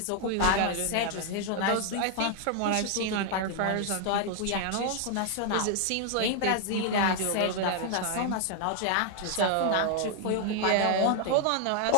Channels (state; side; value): different; both; correlation 0.00